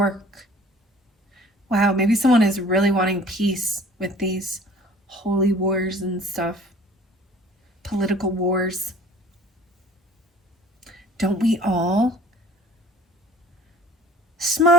Wow, maybe someone is really wanting peace with these holy wars and stuff. Political wars. Don't we all?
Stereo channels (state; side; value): normal; both; correlation 0.49